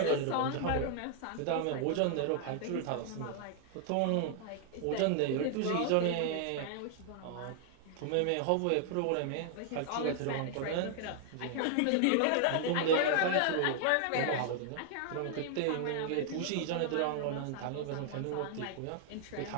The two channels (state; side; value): different; both; correlation 0.00